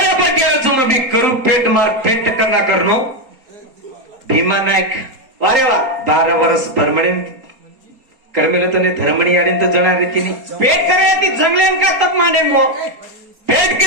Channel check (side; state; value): left; late; 4.3 ms